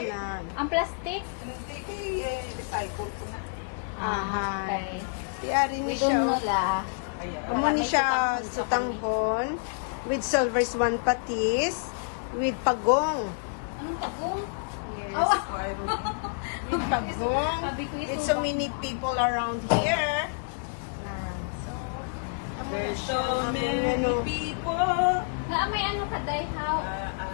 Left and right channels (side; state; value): right; silent; digital silence